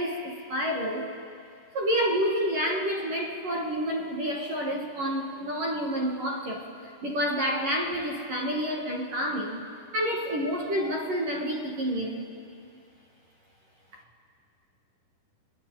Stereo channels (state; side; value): late; left; 11 ms